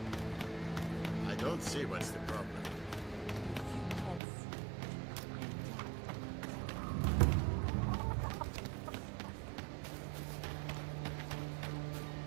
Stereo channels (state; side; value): drops out; left; at 4.2 s